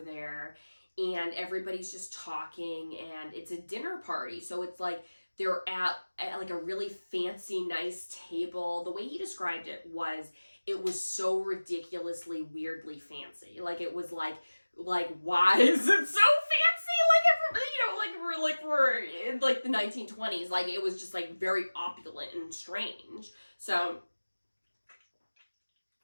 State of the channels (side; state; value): both; inverted; correlation -1.00